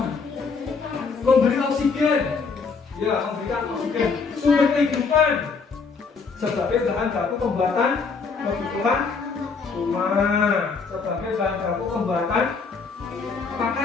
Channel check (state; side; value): quieter; right; 4.9 dB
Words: Memberi oksigen, ya memberikan oksigen. Sumber kehidupan sebagai bahan baku pembuatan kebutuhan rumah, sebagai bahan baku pembuatan